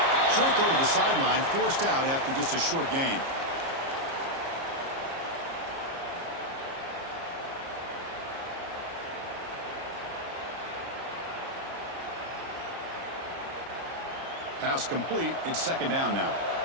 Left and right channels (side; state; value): left; late; 30 ms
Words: Short throw to the sideline, forced out after just a short gain. Pass complete. It's second down now.